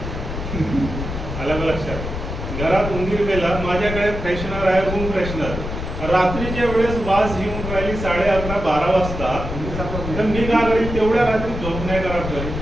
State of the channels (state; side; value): noise; left; rumble, 6 dB below the sound